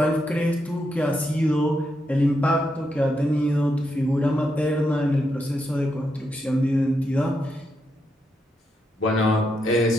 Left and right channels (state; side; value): normal; both; correlation 0.82